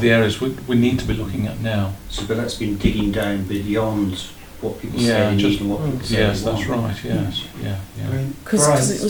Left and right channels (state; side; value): identical; both; correlation 1.00